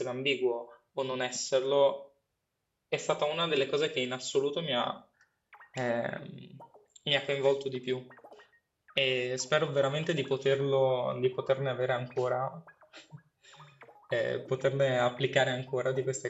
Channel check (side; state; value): both; identical; correlation 1.00